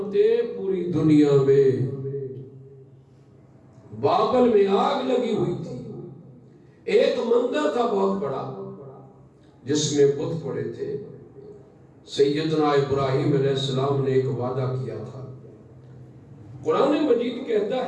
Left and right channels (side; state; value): both; identical; correlation 1.00